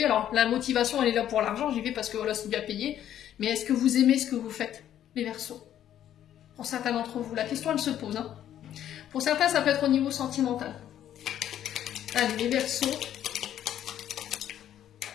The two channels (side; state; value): right; quieter; 11.0 dB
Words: Alors, la motivation, elle est là pour l'argent, j'y vais parce que voilà, c'est bien payé. Mais est-ce que vous aimez ce que vous faites, les Verseaux? Pour certains d'entre vous, la question, elle se pose. Hein. Pour certains, ça peut être au niveau sentimental. Allez, les Verseaux.